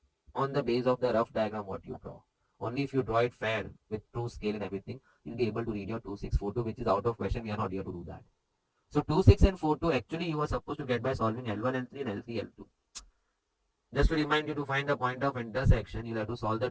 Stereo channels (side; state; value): both; identical; correlation 1.00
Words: on the base of the rough diagram what you draw. Only if you draw it fair with true scale and everything, you'll be able to read your 2, 6, 4, 2, which is out of question. We are not here to do that. So 2, 6 and 4, 2 actually you were supposed to get by solving L1, L3 and L3, L2. Just to remind you, to find the point of intersection, you'll have to solve the